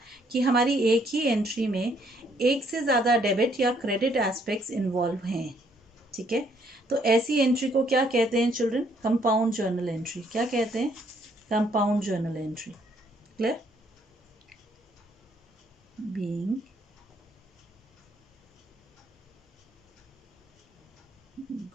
कि हमारी एक ही एंट्री में एक से ज़्यादा डेबिट या क्रेडिट एस्पेक्ट्स इन्वॉल्व हैं, ठीक है, तो ऐसी एंट्री को क्या कहते हैं चिल्ड्रन, कंपाउंड जर्नल एंट्री। क्या कहते हैं, compound journal entry. Clear, being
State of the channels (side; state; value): both; normal; correlation 0.68